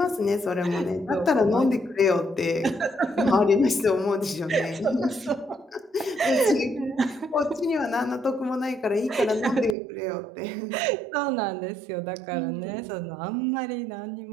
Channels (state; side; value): drops out; left; at 9.8 s